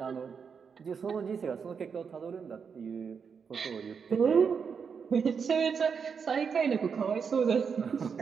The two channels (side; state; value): left; quieter; 6.2 dB